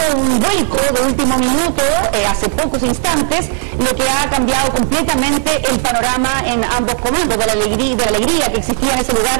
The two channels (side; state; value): left; silent; 70 dB below the other